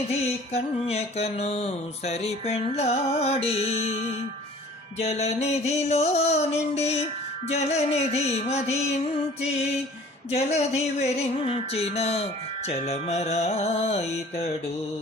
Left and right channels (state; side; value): normal; both; correlation 0.48